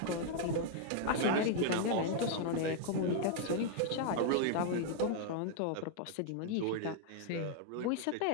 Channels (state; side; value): different; both; correlation 0.00